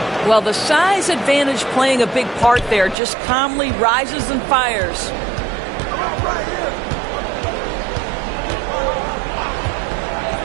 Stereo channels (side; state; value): left; drops out; at 3.0 s